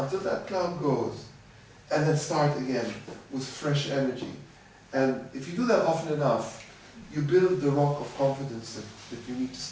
that cloud goes, and then start again with fresh energy. And if you do that often enough, you build the rock of confidence that you need to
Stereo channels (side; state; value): both; identical; correlation 1.00